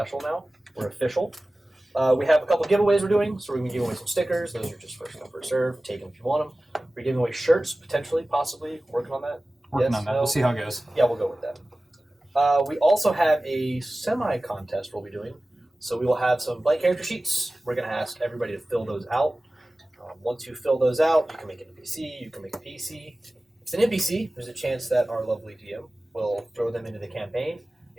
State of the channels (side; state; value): both; normal; correlation 0.97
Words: now. We're official. We have a couple giveaways we're doing, so we're going to give away some stickers. Those are just first come, first serve. Take them if you want them. We're giving away shirts, potentially, possibly. Working on that. Working Yes, on that. no? We'll see how it goes. Yeah, we'll go with that. We also have a semi-contest we'll be doing. So we will have some blank character sheets. We're going to ask everybody to fill those out. Once you fill those out, you can make an NPC, you can make a PC. If it's an NPC, there's a chance that our lovely DM will throw them into the campaign.